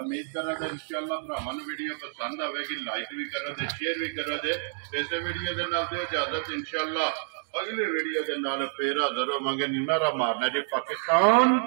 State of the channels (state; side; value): silent; left; digital silence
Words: ਕਰਾਂ ਕਿ ਇਨਸ਼ਾਅੱਲਾ ਭਰਾਵਾਂ ਨੂੰ ਵੀਡੀਓ ਪਸੰਦ ਆਵੇਗੀ। ਲਾਈਕ ਵੀ ਕਰੋ ਤੇ ਸ਼ੇਅਰ ਵੀ ਕਰੋ ਤੇ ਇਸੇ ਵੀਡੀਓ ਦੇ ਨਾਲ ਦਿਓ ਇਜਾਜ਼ਤ। ਇਨਸ਼ਾਅੱਲਾ ਅਗਲੀ ਵੀਡੀਓ ਦੇ ਨਾਲ ਫੇਰ ਹਾਜ਼ਰ ਹੋਵਾਂਗੇ। ਨਾਰਾ ਮਾਰਨਾ ਜੀ ਪਾਕਿਸਤਾਨ